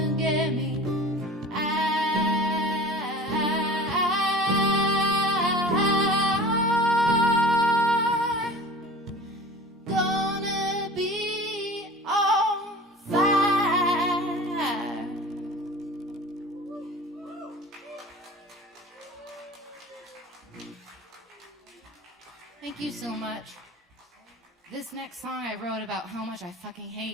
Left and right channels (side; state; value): both; normal; correlation 0.40